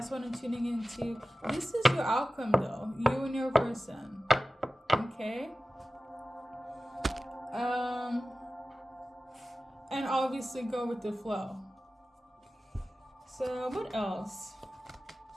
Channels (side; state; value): both; normal; correlation 0.95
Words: what I'm tuning into. This is your outcome, though. You and your person. Okay? And obviously go with the flow. So, what else?